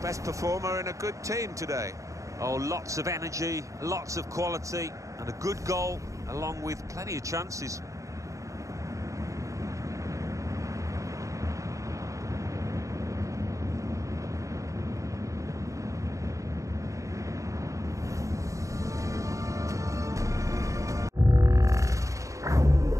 best performer in a good team today. Oh, lots of energy, lots of quality, and a good goal, along with plenty of chances.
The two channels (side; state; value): left; late; 0.16 ms